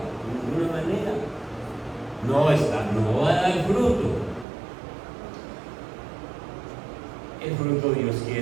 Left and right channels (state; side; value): drops out; left; at 4.5 s